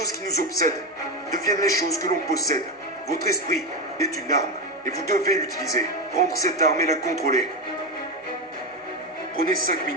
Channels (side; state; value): both; normal; correlation 0.13